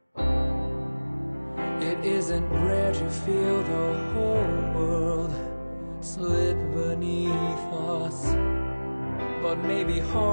it isn't rare to feel the whole world slip beneath us, but maybe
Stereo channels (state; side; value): inverted; both; correlation -1.00